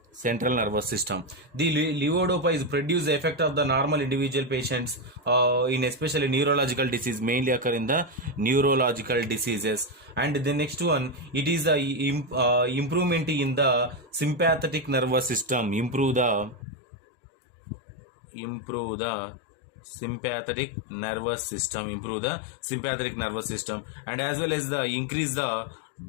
central nervous system. The levodopa is produce the effect of the normal individual patients in especially neurological disease, mainly occur in the neurological diseases. And the next one, it is the improvement in the sympathetic nervous system. Improve the sympathetic nervous system, and as well as the increase the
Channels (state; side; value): drops out; right; at 16.6 s